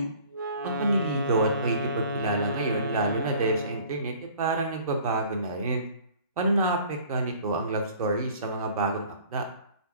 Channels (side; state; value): both; inverted; correlation -0.50